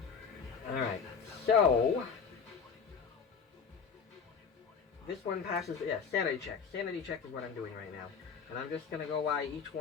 Alright, so this one passes, yeah, sanity check. Sanity check is what I'm doing right now. And I'm just going to go by each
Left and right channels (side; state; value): right; quieter; 6.2 dB